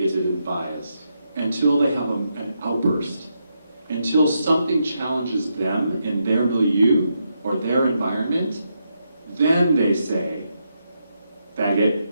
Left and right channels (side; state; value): both; inverted; correlation -0.82